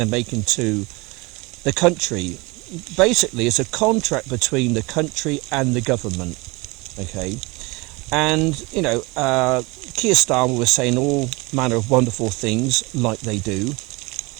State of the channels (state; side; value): quieter; left; 25.3 dB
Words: making to the country. Basically, it's a contract between the country and the government. Okay, and you know, Keir Starmer was saying all manner of wonderful things like they do.